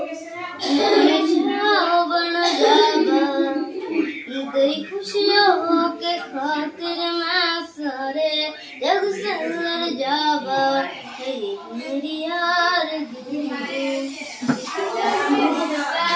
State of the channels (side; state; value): both; identical; correlation 1.00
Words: बन जावा तेरी खुशियों के खातिर मैं सारे जग से लड़ जावा मेरी यार